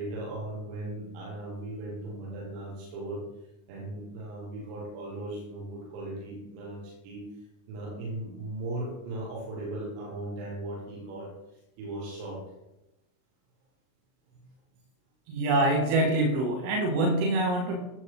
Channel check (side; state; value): left; late; 39 ms